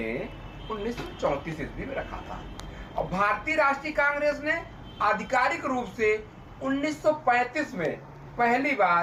1934 ईस्वी में रखा था और भारतीय राष्ट्रीय कांग्रेस ने आधिकारिक रूप से 1935 में पहली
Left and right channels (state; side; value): identical; both; correlation 1.00